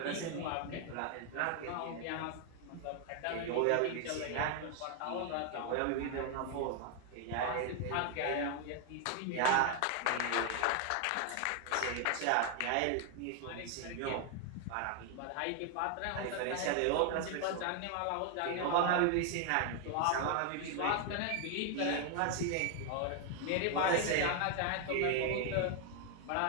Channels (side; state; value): both; different; correlation 0.00